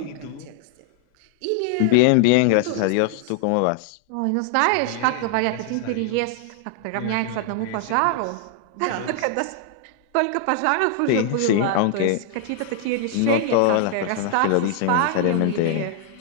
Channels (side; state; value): both; different; correlation 0.00